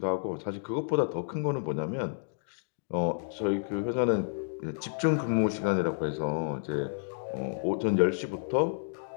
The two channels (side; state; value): right; silent; digital silence